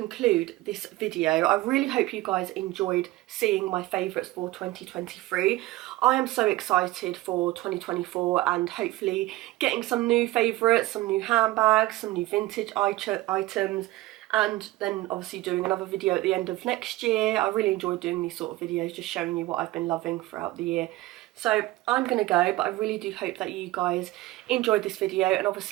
this video. I really hope you guys enjoyed seeing my favourites for 2023. I am so excited for 2024 and hopefully getting some new favourites, some new handbags, some new vintage items, and then obviously doing another video at the end of next year. I really enjoy doing these sort of videos, just showing you what I've been loving throughout the year. So I'm going to go, but I really do hope that you guys enjoyed this video, and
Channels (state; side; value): quieter; left; 18.1 dB